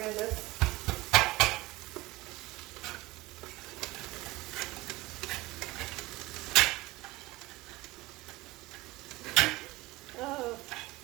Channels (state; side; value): quieter; left; 20.1 dB